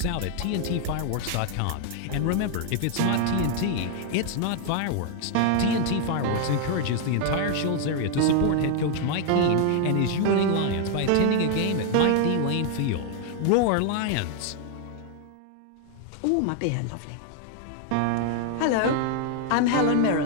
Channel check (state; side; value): different; both; correlation 0.00